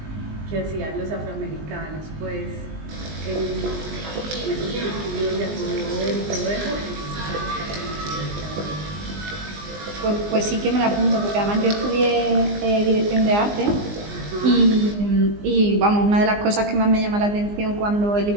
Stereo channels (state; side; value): late; left; 19 ms